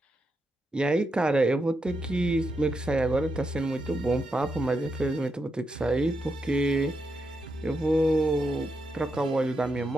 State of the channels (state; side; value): normal; both; correlation 0.84